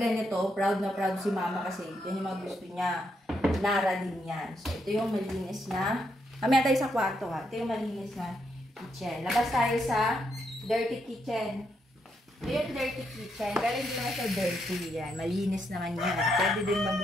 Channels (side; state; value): both; normal; correlation 0.78